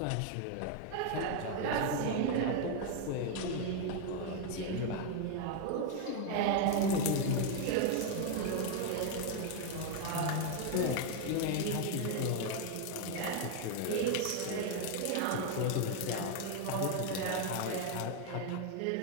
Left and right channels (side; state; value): both; different; correlation 0.00